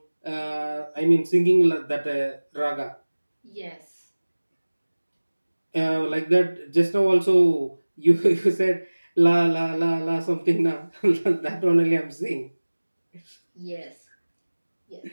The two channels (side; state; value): both; inverted; correlation -1.00